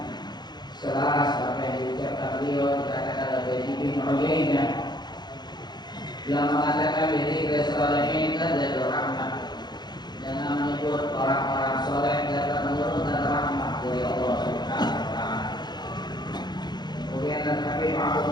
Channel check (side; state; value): right; late; 0.21 ms